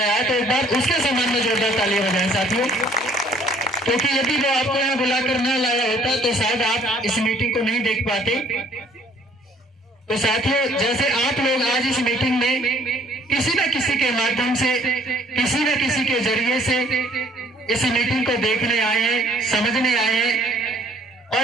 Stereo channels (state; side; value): normal; both; correlation 0.59